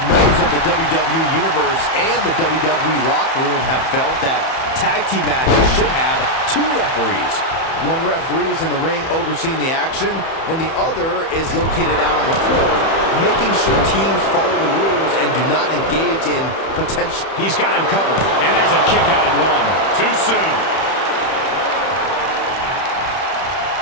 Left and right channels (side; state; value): right; late; 31 ms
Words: members of the WWE Universe and the WWE locker room have felt that tag team matches should have two referees. One referee is in the ring overseeing the action, and the other is located out on the floor, making sure teams follow the rules and do not engage in potential. He's got him covered, and there's a kick out at one. Too soon.